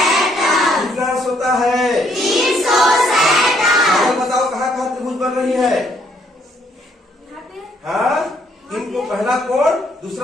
कितना अंश होता है? 360। बताओ कहाँ कहाँ त्रिभुज बन रही है? हाँ, इनको पहला कोण,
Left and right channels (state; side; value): normal; both; correlation 0.69